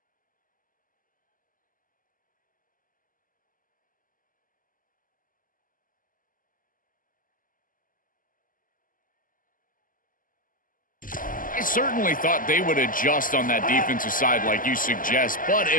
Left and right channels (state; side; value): late; right; 0.40 ms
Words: I certainly thought they would adjust on that defensive side like you suggest, but